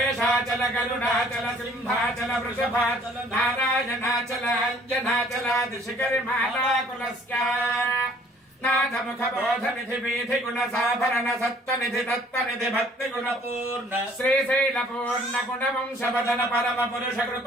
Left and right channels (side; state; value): both; normal; correlation 0.57